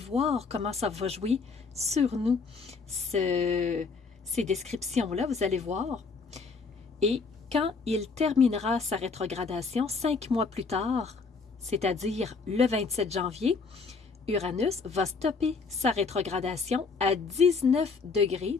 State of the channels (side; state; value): right; quieter; 4.7 dB